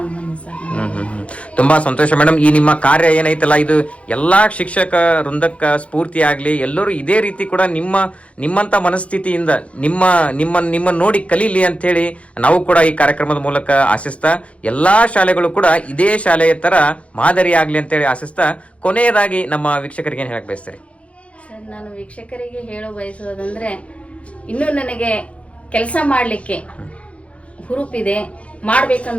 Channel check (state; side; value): late; right; 0.063 ms